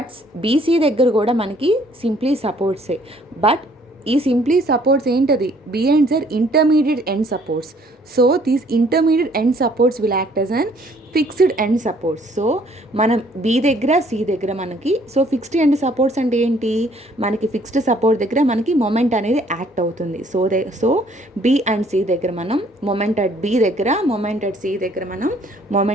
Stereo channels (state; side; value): normal; both; correlation 0.61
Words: బీసీ దగ్గర కూడా మనకి సింప్లీ సపోర్ట్సే. బట్ ఈ సింప్లీ సపోర్ట్స్ ఏంటది? బి అండ్ జర్ intermediate end supports. So these intermediate end supports will act as an fixed end supports. So మనం బి దగ్గర సి దగ్గర మనకి ఫిక్స్డ్ ఎండ్ సపోర్ట్స్ అంటే ఏంటి? మనకి ఫిక్స్డ్ సపోర్ట్ దగ్గర మనకి మొమెంట్ అనేది యాక్ట్ అవుతుంది. సో బి అండ్ సి దగ్గర మనం మొమెంట్ అట్ బి దగ్గర, మొమెంట్ అట్ సి దగ్గర మనం